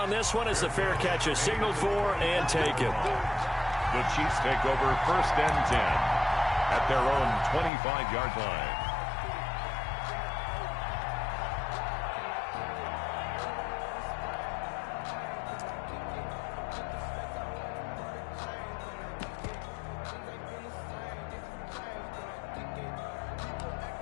this one as the fair catch is signaled for and taken. The Chiefs take over 1st and 10 at their own 25-yard line.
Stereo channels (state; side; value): drops out; right; at 7.7 s